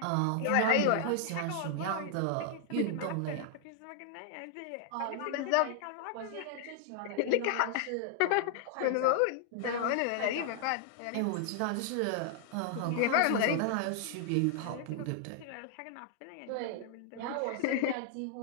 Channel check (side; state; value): both; different; correlation 0.00